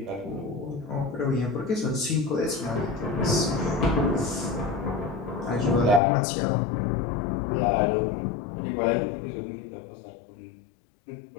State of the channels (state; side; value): drops out; right; at 6.0 s